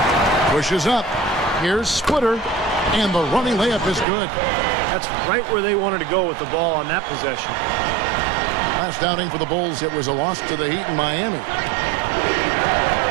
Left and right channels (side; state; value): left; drops out; at 4.0 s